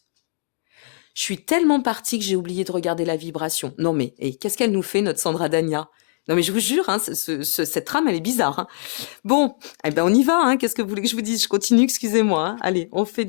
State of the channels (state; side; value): silent; right; digital silence